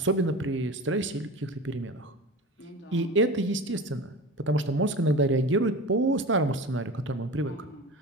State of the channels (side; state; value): both; normal; correlation 0.32